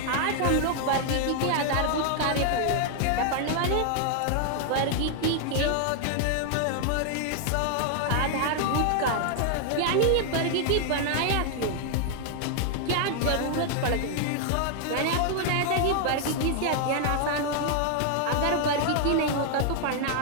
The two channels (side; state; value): both; different; correlation 0.00